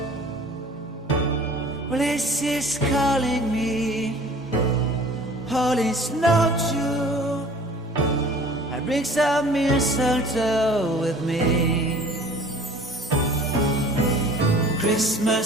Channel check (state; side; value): normal; both; correlation 0.48